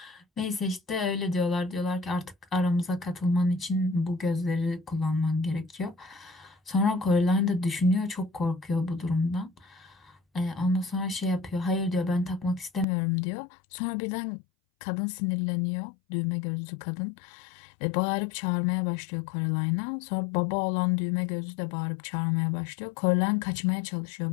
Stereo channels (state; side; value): drops out; right; at 12.9 s